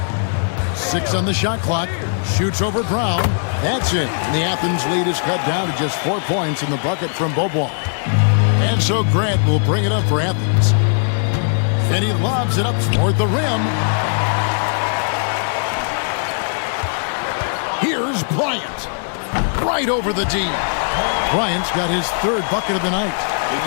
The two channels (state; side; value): silent; right; 57 dB below the other